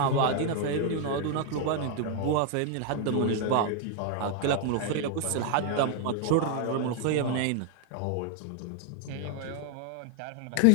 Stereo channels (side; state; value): both; different; correlation 0.00